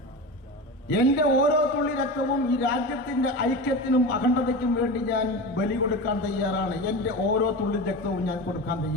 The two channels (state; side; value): normal; both; correlation 0.26